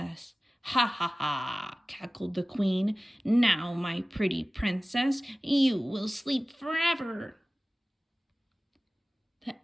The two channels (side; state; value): both; normal; correlation 0.97